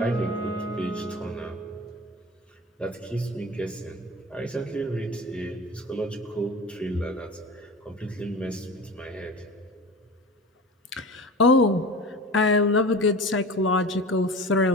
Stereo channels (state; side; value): normal; both; correlation 0.34